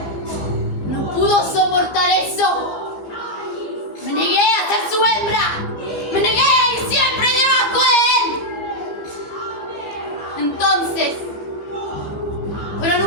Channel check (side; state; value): right; late; 15 ms